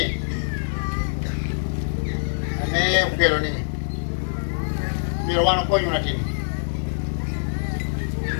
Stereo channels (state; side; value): silent; right; 62 dB below the other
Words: ame ukelo ni miro wano ko yuna tin